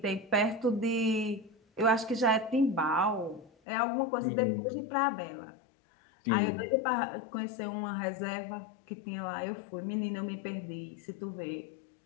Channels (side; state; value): right; drops out; at 3.5 s